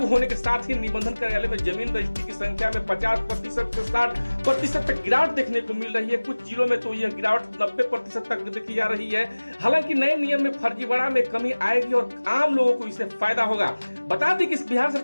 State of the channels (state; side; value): inverted; both; correlation -1.00